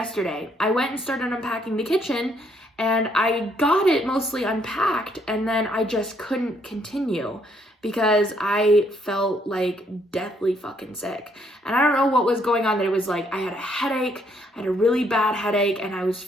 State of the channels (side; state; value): both; normal; correlation 0.70